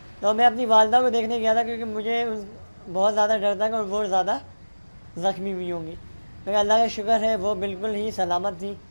तो मैं अपनी वालदा को देखने गया था क्योंकि मुझे बहुत ज़्यादा डर था कि वो ज़्यादा ज़ख्मी हुई होंगी, लेकिन अल्लाह का शुक्र है वो बिल्कुल ही सलामत थी।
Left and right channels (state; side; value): inverted; both; correlation -1.00